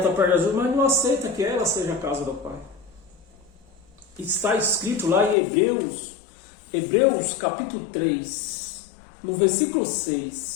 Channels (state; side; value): drops out; right; at 5.4 s